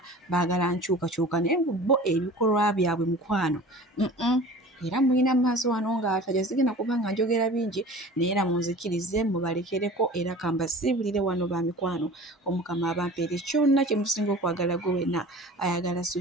baagala nkyukakyuka naye bo ebikolwa byabwe mukwano era mulina maaso wano ng'ataja sigenda kuba nga njogera bingi naye era munzikirize mubalekereko era kambasiibulire wano ba mikwano omukama abampeere kyonna kye musinga okwagala gwe wenna ayagala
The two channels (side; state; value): both; normal; correlation 0.41